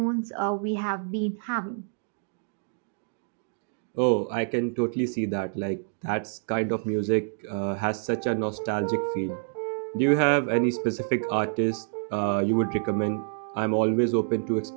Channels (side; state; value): left; silent; digital silence